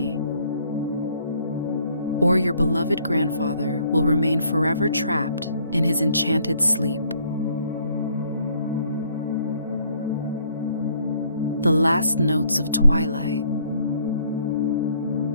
or your beloved grandfather will remain forever trapped in his enchanted sleep. The last notes of twilight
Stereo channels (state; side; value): inverted; both; correlation -0.65